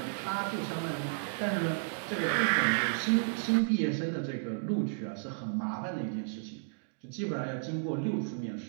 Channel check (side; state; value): left; silent; digital silence